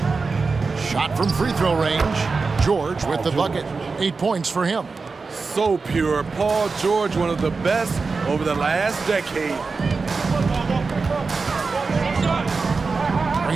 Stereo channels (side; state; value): left; quieter; 4.4 dB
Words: Shot from free throw range. George with the bucket. 8 points for him. So pure. Paul George, one of the best over the last decade.